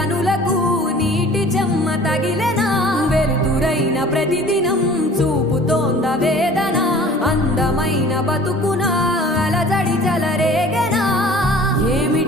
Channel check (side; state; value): both; normal; correlation 0.47